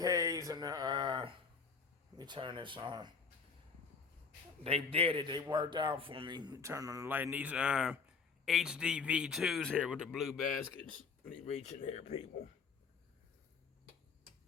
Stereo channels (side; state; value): right; quieter; 5.4 dB